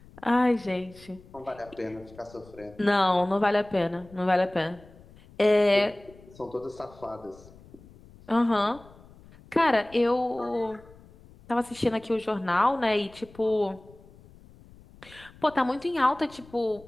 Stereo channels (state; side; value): noise; left; rumble, 23 dB below the sound